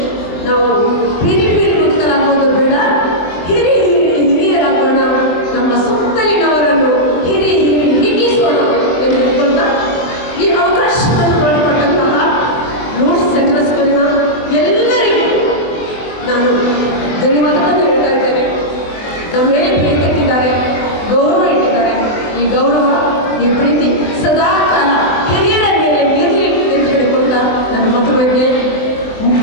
ನಾವು ಪಿರಿ ಮುಕ್ತರಾಗೋದು ಬೇಡ, ಹಿರಿಯರಾಗೋಣ, ನಮ್ಮ ಸುತ್ತಲಿನವರನ್ನು ಹಿಗ್ಗಿಸೋಣ ಎಂದು ಹೇಳ್ಕೊಂಡ ಈ ಅವಕಾಶವನ್ನು ಮಾಡಿಕೊಟ್ಟಂತಹ ನೋಟ್ಸ್ ಸೆಂಟರ್ ಸ್ಕೂಲಿನ ಎಲ್ಲರಿಗೂ ನಾನು ಧನ್ಯವಾದಗಳನ್ನು ಹೇಳ್ತಾ ಇದ್ದೇನೆ. ನಮ್ಮ ಮೇಲೆ ಪ್ರೀತಿ ಇಟ್ಟಿದ್ದಾರೆ, ಗೌರವ ಇಟ್ಟಿದ್ದಾರೆ. ಈ ಗೌರವ, ಈ ಪ್ರೀತಿ ಸದಾ ಕಾಲ ಹಿರಿಯರ ಮೇಲೆ ಇರಲಿ ಎಂದು ಹೇಳಿಕೊಂಡ ನನ್ನ ಮತಗಳಿಗೆ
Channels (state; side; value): late; right; 23 ms